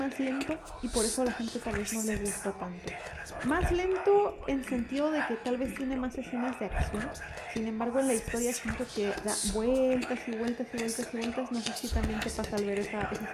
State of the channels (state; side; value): identical; both; correlation 1.00